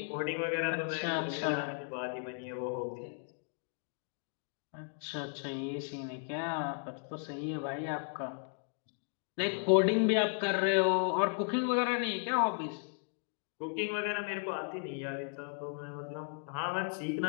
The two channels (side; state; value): right; silent; 54 dB below the other